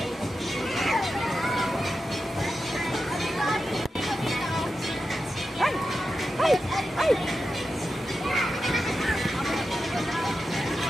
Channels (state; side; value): normal; both; correlation 0.90